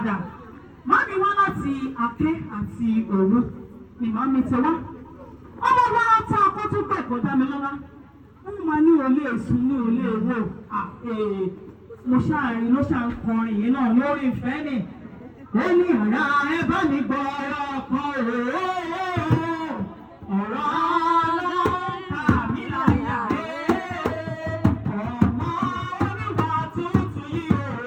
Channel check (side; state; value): both; identical; correlation 1.00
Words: Màámi wá láti Aké àti Òru ni màámi ti wá. Ọmọ wa tá a kó tún pẹ̀ kó dá mi lọ́lá. Wọ́n máa ní olè èsùn ní olè èwò. Mo ṣáàrin ló ṣà ń kọrin yìí náà lórí ìfẹ́ ni. Ó ní ọ̀rá ẹ bá mi gbọ́ ọ̀rọ̀ kan ọ̀rọ̀ ọlọ́ta mi láyà ọmọ oníwà tuntun yìí o